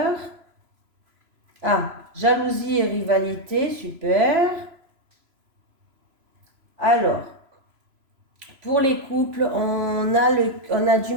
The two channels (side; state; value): left; late; 3.0 ms